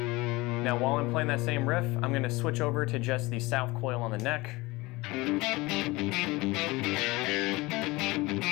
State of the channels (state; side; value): quieter; right; 22.0 dB